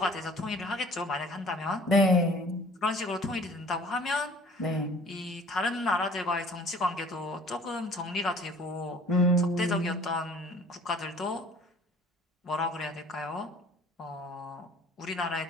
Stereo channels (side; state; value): both; normal; correlation 0.51